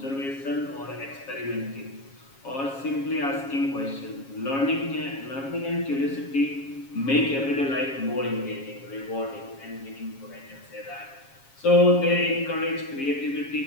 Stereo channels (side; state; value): right; late; 7.3 ms